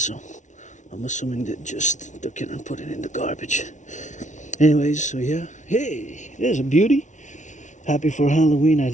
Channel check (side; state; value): right; late; 0.36 ms